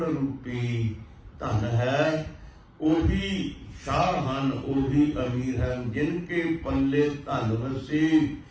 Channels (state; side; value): identical; both; correlation 1.00